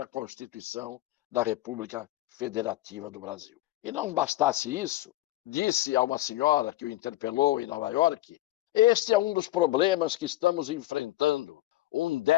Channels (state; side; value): quieter; right; 16.2 dB